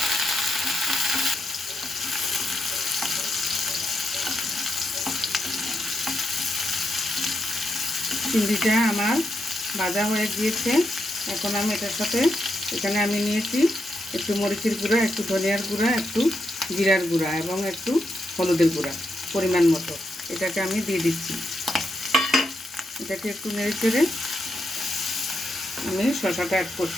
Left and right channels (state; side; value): normal; both; correlation 0.83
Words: চিংড়িটা আমার ভাজা হয়ে গিয়েছে। এখন আমি এটার সাথে এখানে আমি নিয়েছি একটু মরিচের গুঁড়া, একটু ধনিয়ার গুঁড়া, একটু জিরার গুঁড়া এবং একটু হলুদের গুঁড়া পরিমাণ মতো। এটাকে আমি দিয়ে দিচ্ছি। এটাকে একটু নেড়ে চেড়ে আমি শসাটা অ্যাড